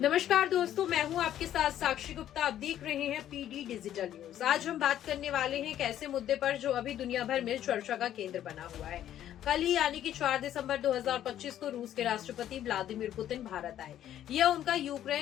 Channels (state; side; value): quieter; right; 11.4 dB